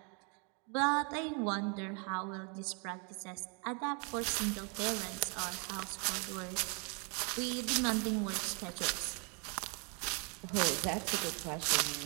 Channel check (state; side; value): quieter; left; 36.0 dB